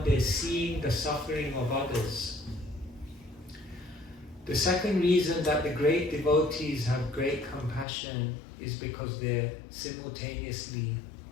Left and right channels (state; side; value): drops out; right; at 7.9 s